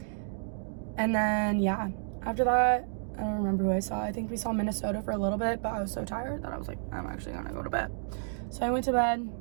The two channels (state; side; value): silent; left; digital silence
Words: And then, yeah, after that, I don't remember who I saw. I think we saw Minnesota for a little bit, but I was so tired that I was like, I'm actually gonna go to bed. So I went to bed.